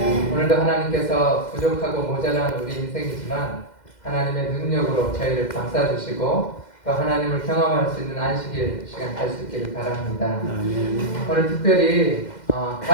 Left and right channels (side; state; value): right; late; 2.1 ms